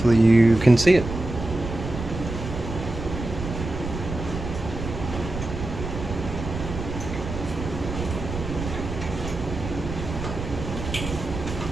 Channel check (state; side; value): noise; right; rumble, 7 dB below the sound